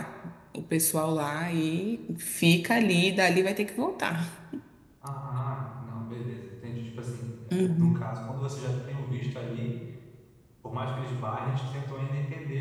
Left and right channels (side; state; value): both; identical; correlation 1.00